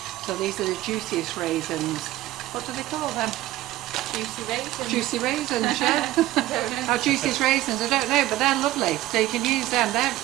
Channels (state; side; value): quieter; left; 15.8 dB